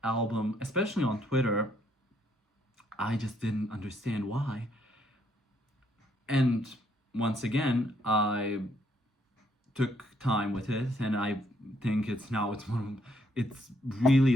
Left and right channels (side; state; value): both; normal; correlation 0.70